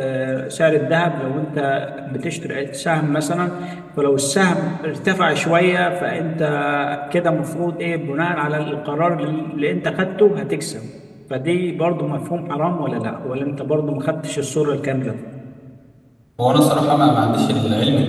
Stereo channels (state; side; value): identical; both; correlation 1.00